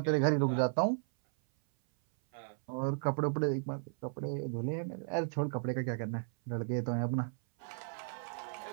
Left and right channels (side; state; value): left; silent; 54 dB below the other